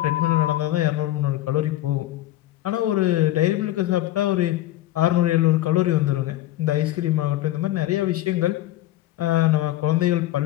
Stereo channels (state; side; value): quieter; right; 15.0 dB